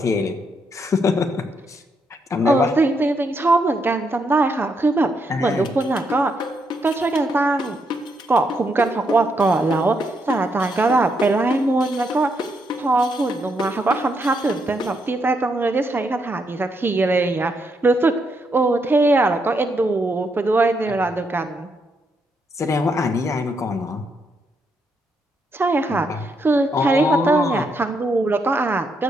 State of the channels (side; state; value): both; normal; correlation 0.78